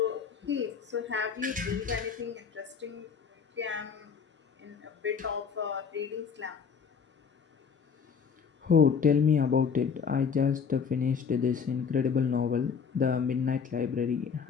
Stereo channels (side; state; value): right; quieter; 6.4 dB